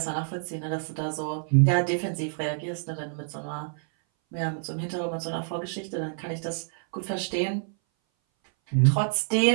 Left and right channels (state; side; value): silent; left; 58 dB below the other